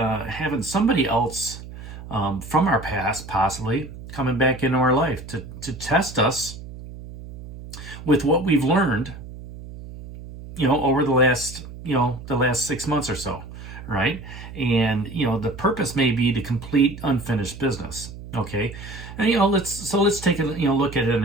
somebody else. From our past, possibly coming back into our life to test us with what we've learned, over the last 6 months or so, right? And the purpose may be to complete unfinished business. Okay, and let's take a look at it in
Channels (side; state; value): right; noise; hum, 13 dB below the sound